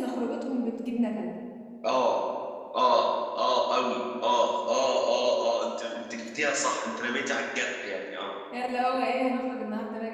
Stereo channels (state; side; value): identical; both; correlation 1.00